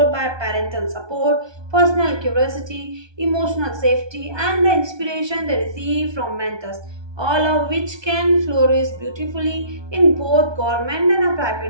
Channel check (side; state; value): left; late; 1.2 ms